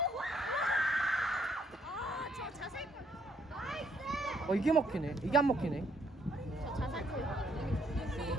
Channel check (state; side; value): normal; both; correlation 0.69